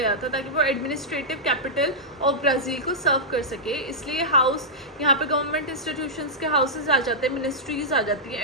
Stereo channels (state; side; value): normal; both; correlation -0.11